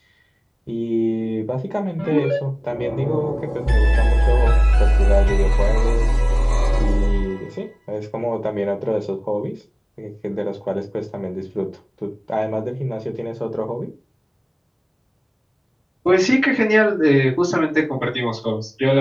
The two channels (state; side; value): identical; both; correlation 1.00